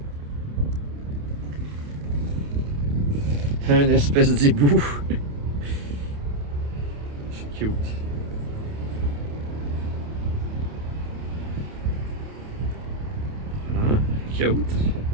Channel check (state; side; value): late; left; 28 ms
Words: Un espèce d'hibou. C'est cute. Cute.